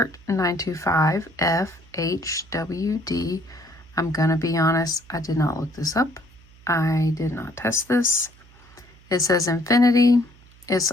925 FHWD. I'm going to be honest, I did not look this up. I did not test this. It says Infinity. It's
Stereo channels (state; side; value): noise; right; hum, 26 dB below the sound